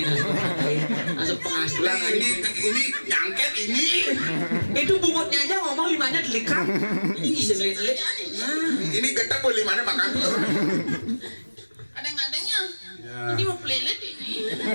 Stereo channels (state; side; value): inverted; both; correlation -1.00